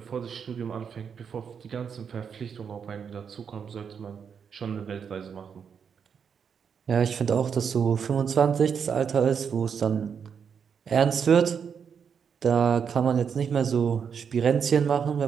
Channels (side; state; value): left; quieter; 7.0 dB